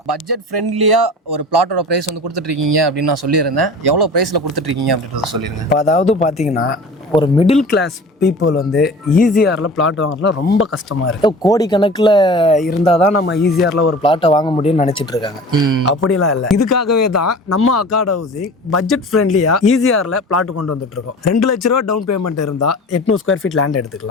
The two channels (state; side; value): normal; both; correlation 0.39